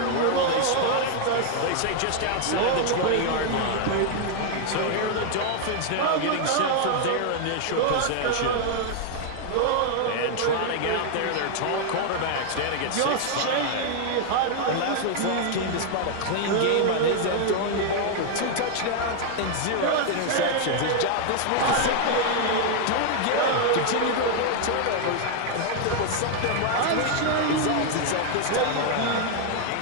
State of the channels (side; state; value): both; different; correlation 0.00